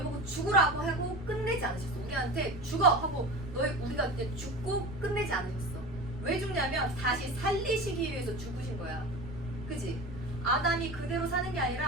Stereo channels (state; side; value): noise; right; rumble, 14 dB below the sound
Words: 보고 죽으라고 하고 끝내지 않으셨어. 우리한테 죽어 하고 우리가 이제 죽고 끝내지 않으셨어. 왜 죽냐면 다시 살리시기 위해서 죽으신 거야. 그지? 아담이 그대로 사는 게